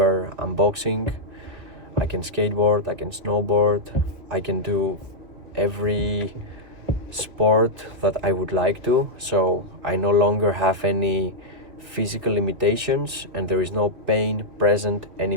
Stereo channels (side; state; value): left; late; 2.5 ms